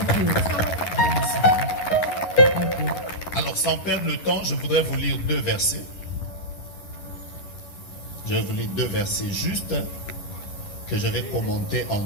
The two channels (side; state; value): right; late; 11 ms